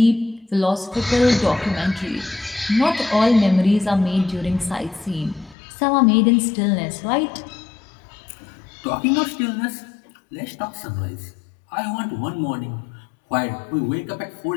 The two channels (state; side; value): drops out; right; at 5.6 s